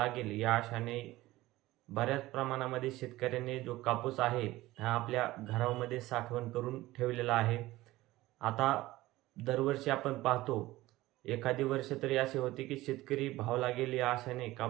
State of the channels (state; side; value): quieter; left; 17.7 dB